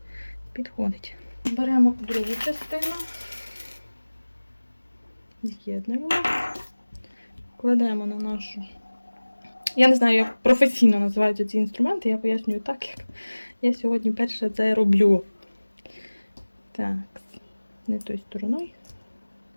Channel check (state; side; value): inverted; both; correlation -1.00